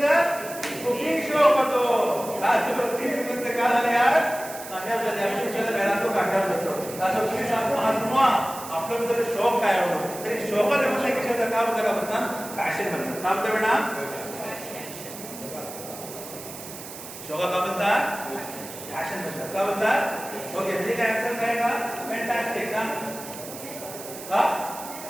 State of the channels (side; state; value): right; noise; hiss, 12 dB below the sound